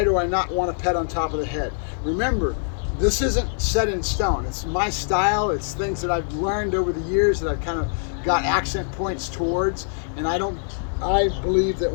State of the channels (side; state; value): right; silent; digital silence